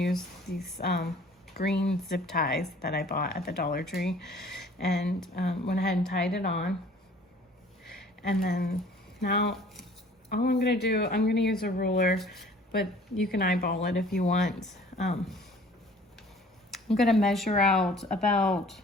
these green zip ties that I bought at the Dollar Tree, and went ahead and tied it on. And then now all I'm gonna do, I'm gonna use a ruler, but you can eyeball it if you want. I'm gonna measure out about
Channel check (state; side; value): normal; both; correlation 0.52